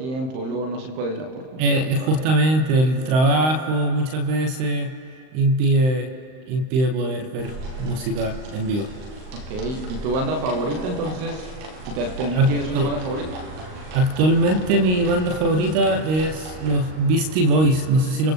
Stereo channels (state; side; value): late; left; 39 ms